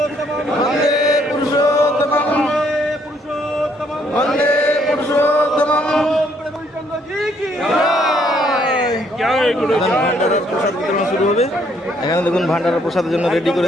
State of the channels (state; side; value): normal; both; correlation 0.68